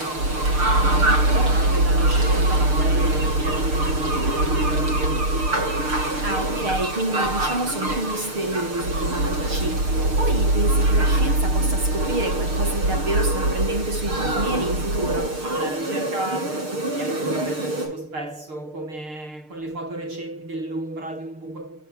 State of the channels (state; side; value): late; left; 6.6 ms